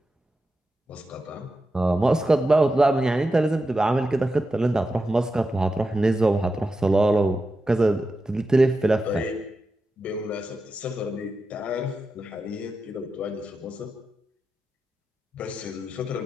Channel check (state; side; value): normal; both; correlation 0.90